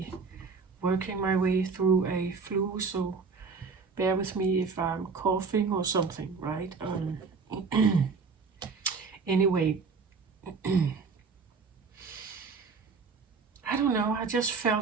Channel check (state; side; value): quieter; left; 4.9 dB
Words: working my way through a flu, so bear with me if I'm coughing or something, right? Anyway, I don't know, I just